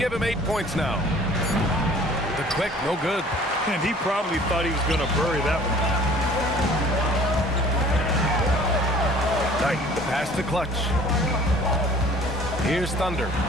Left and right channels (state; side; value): normal; both; correlation 0.51